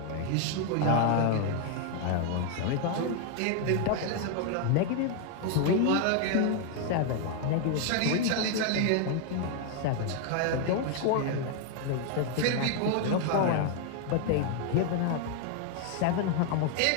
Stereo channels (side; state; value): both; different; correlation 0.00